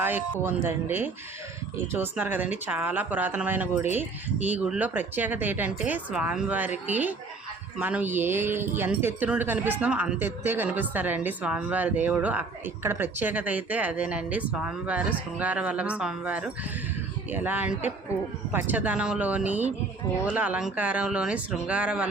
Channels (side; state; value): left; quieter; 3.8 dB